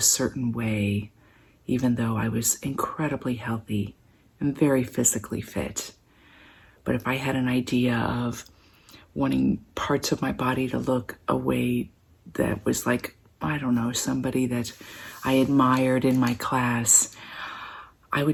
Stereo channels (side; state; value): both; identical; correlation 1.00